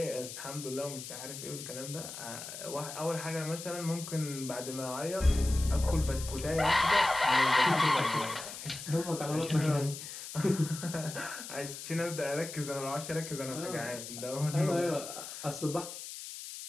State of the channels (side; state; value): left; noise; hiss, 10 dB below the sound